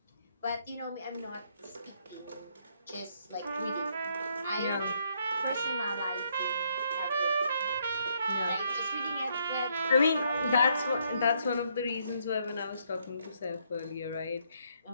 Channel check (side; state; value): both; inverted; correlation -0.72